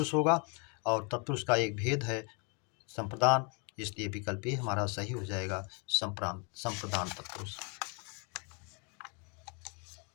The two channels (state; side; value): quieter; right; 35.0 dB